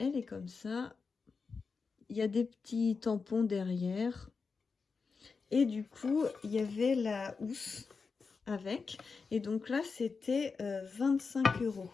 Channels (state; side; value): quieter; right; 4.9 dB